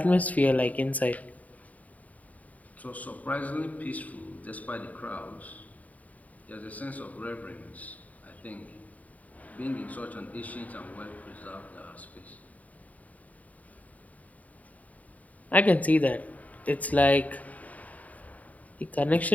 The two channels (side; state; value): right; late; 0.072 ms